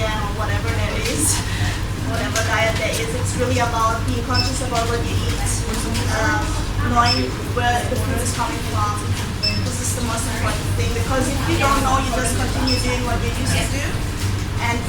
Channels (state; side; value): identical; both; correlation 1.00